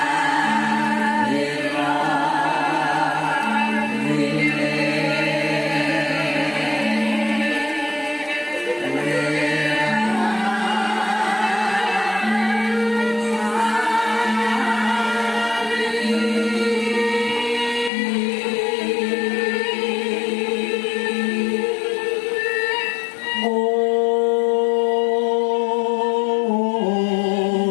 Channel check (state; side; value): drops out; right; at 17.9 s